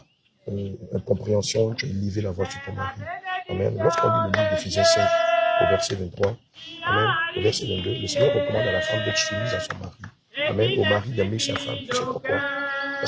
incompréhension, tu as élevé la voix sur ton mari. Amen. Lorsqu'on lit le livre d'Éphésiens 5, au verset 23, Amen, au verset 22, le Seigneur recommande à la femme d'être soumise à son mari. Amen. Au mari d'aimer sa femme. Tu sais pourquoi?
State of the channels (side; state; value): both; identical; correlation 1.00